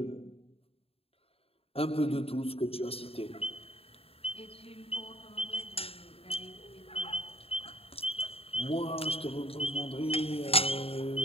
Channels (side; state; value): right; late; 0.28 ms